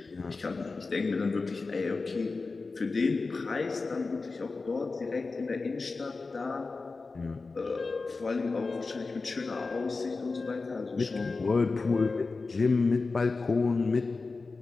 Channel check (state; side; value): quieter; right; 3.9 dB